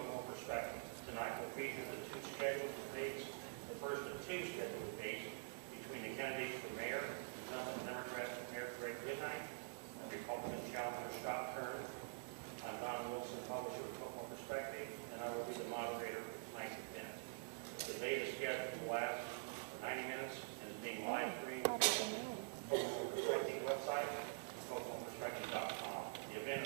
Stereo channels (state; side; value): silent; left; digital silence